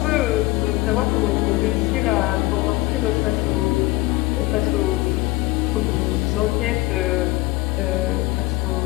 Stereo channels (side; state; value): right; quieter; 20.2 dB